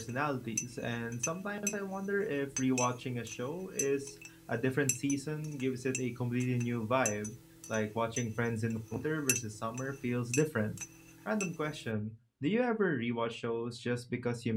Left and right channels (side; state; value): both; identical; correlation 1.00